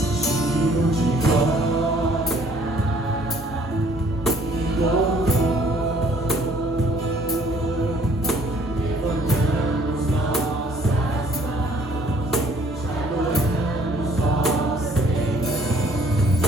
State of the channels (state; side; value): normal; both; correlation 0.59